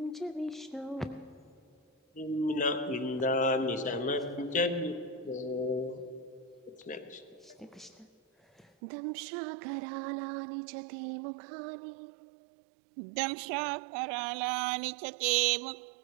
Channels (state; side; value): drops out; left; at 8.7 s